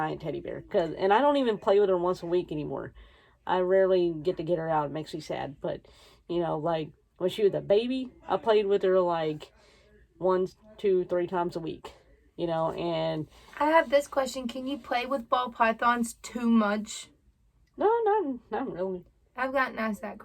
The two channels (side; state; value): both; identical; correlation 1.00